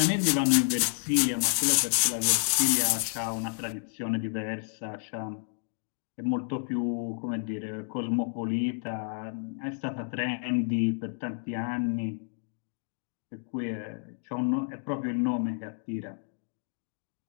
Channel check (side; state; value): right; silent; 56 dB below the other